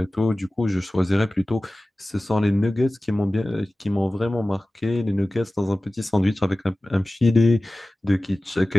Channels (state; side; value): normal; both; correlation 0.97